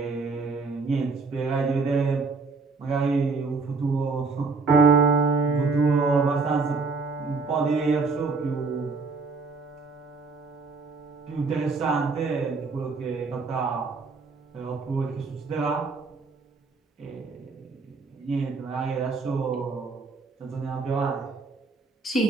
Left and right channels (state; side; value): quieter; left; 4.4 dB